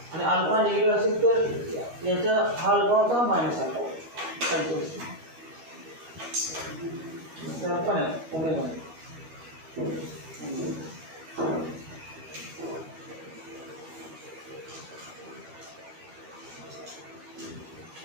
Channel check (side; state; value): left; late; 13 ms